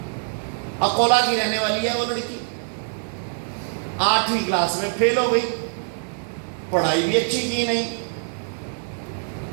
अकोला की रहने वाली है वो लड़की, 8वीं क्लास में फेल हो गई, पढ़ाई भी अच्छी की नहीं,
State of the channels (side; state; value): left; silent; digital silence